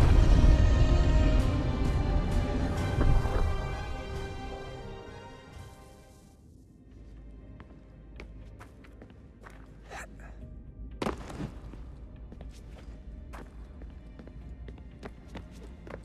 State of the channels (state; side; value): identical; both; correlation 1.00